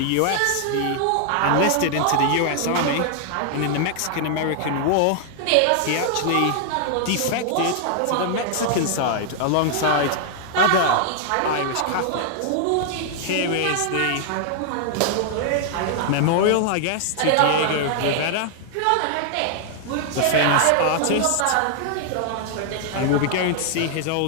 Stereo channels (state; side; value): different; both; correlation 0.00